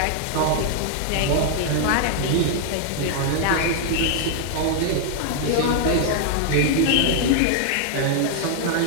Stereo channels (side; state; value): both; different; correlation -0.01